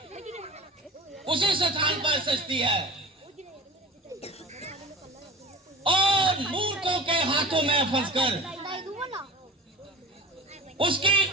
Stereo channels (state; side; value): normal; both; correlation 0.35